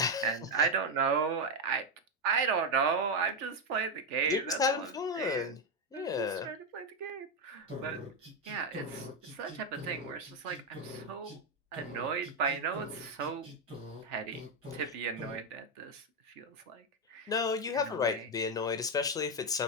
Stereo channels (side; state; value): both; normal; correlation 0.06